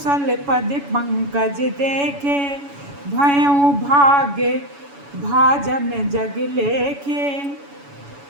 पद पंकज देखे, भयउ भाग्य भाजन जग लेखे।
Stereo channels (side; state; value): left; late; 7.1 ms